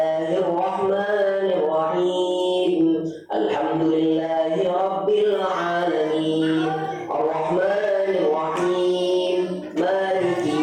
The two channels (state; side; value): identical; both; correlation 1.00